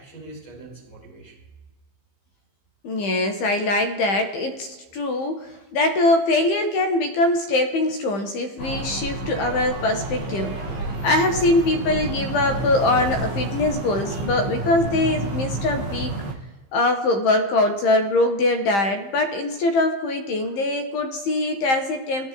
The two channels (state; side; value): late; right; 15 ms